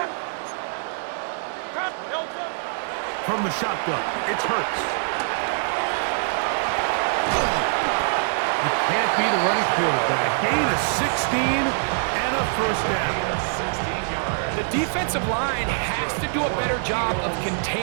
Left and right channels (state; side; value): silent; left; 63 dB below the other